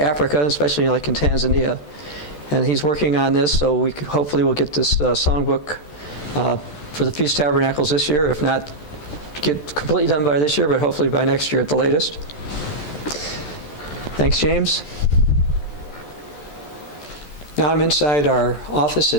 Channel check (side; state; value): right; late; 14 ms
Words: Africa, especially like in Tanzania. And he's working on this, so we hopefully will get this songbook for the Feast of Tabernacles this year. If not, get completely done by this year, but hopefully by next year at the latest. Thanks, James. Now I'm inside our office